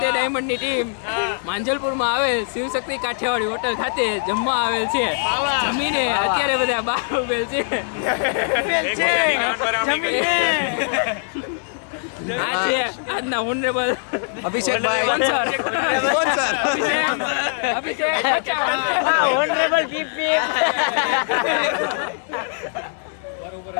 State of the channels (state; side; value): silent; right; digital silence